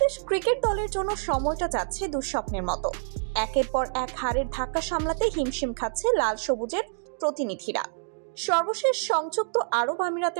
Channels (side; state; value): left; silent; digital silence